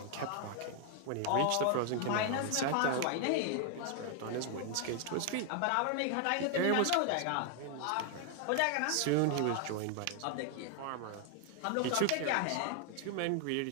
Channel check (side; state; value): both; different; correlation 0.00